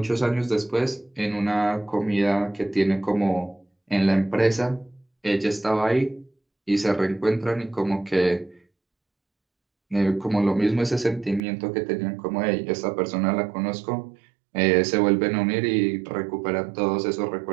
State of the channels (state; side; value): drops out; left; at 11.4 s